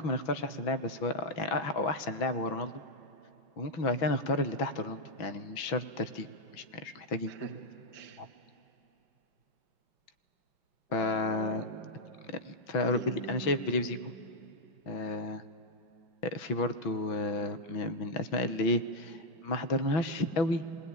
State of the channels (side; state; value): right; late; 6.0 ms